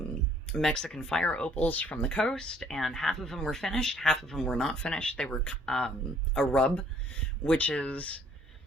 Mexican fire opals from the coast, and half of them were finished, half of them were not finished. They were a rub, which is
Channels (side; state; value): both; normal; correlation 0.61